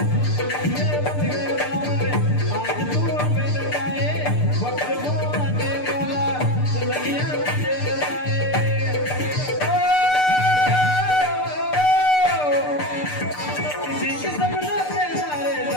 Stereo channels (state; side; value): late; right; 6.7 ms